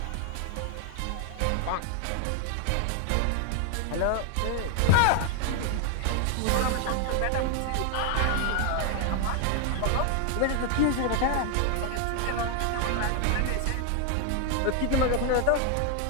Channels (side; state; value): both; different; correlation 0.00